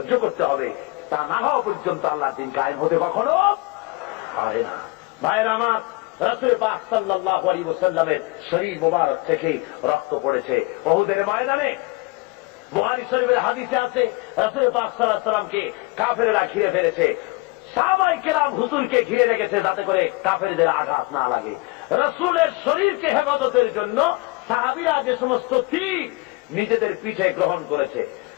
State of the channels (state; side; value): quieter; right; 23.9 dB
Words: করতে হবে। তা না হওয়া পর্যন্ত আল্লাহর দিন কায়েম হতে কখনো পারে না। ভাইয়েরা আমার, রাসূল পাক সাল্লাল্লাহু আলাইহি ওয়াসাল্লামের শরীর মোবারক থেকে রক্ত পড়েছে উহুদের ময়দানে। বুখারী শরীফের হাদিসে আছে, রাসূল পাক সাল্লাল্লাহু আলাইহি ওয়াসাল্লামকে কাফেররা ঘিরে ফেলেছে। সাহাবায়ে কেরাম হুজুরকে ঘিরে রেখেছে যাতে করে কাফেরদের আঘাত না লাগে। রাসূলের শরীরকে হেফাজতের জন্য সাহাবীরা যে সমস্ত তীর নিজেদের পিঠে গ্রহণ করেছে।